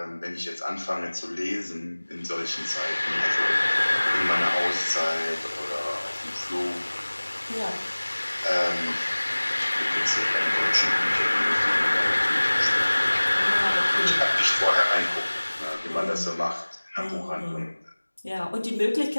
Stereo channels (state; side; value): inverted; both; correlation -1.00